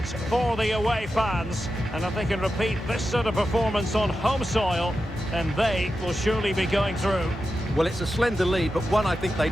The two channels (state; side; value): normal; both; correlation 0.90